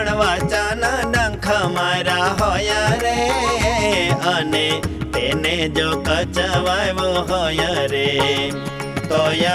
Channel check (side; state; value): both; identical; correlation 1.00